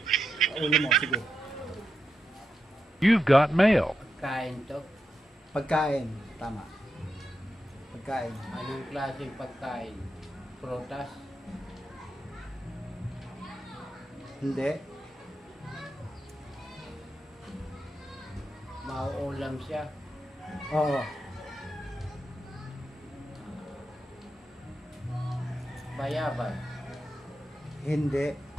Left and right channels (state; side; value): normal; both; correlation 0.86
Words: Ulo mo, sige. You've got mail. Pagkain to. Pagkain, tama. Pagkain. Anong klaseng pagkain? Prutas? Hindi. Mauulam siya? Oo. Bayabas? Hindi.